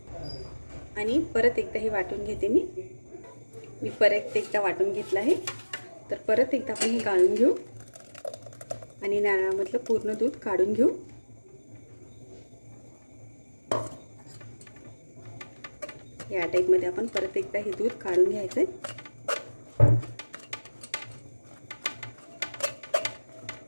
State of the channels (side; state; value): both; inverted; correlation -1.00